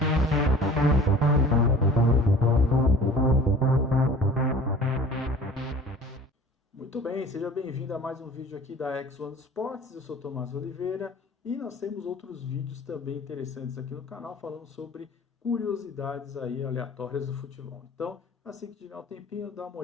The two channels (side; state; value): both; normal; correlation 0.45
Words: Muito bem, seja bem-vindo a mais um vídeo aqui da X1 Sports. Eu sou Tomás Oliveira e nós temos outros vídeos também interessantes aqui no canal falando sobre curiosidades aí aleatórias do futebol. Então, assim que tiver um tempinho, dá uma